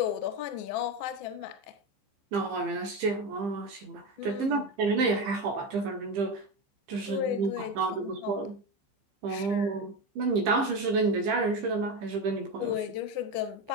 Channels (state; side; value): late; left; 15 ms